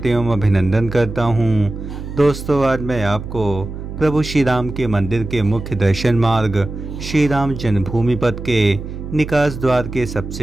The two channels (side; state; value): right; noise; hum, 9 dB below the sound